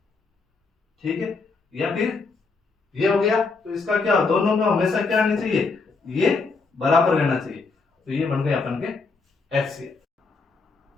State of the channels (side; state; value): right; quieter; 4.2 dB